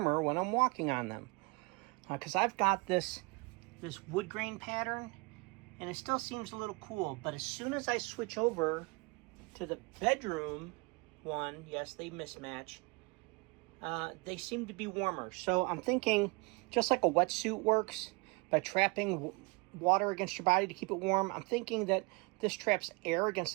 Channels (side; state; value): left; quieter; 28.5 dB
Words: when I'm walking on them. Because I've got this wood grain pattern, and it still seems a little cool, but as soon as I switch over to the bedroom one, yes, they mismatch, they seem to be warmer. So I'm thinking, just like a wetsuit works by trapping water against your body to keep it warm, I'm thinking that this traps air against